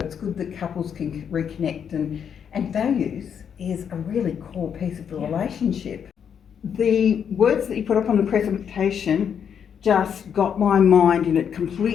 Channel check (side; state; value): right; quieter; 7.8 dB